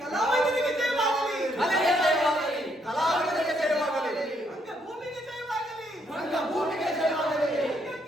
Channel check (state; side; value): normal; both; correlation 0.72